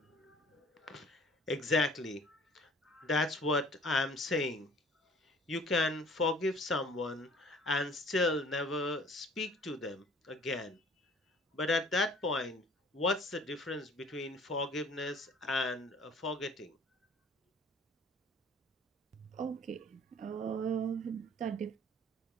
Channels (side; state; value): both; normal; correlation 0.51